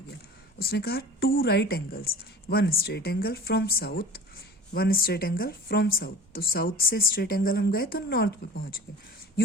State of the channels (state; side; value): normal; both; correlation 0.39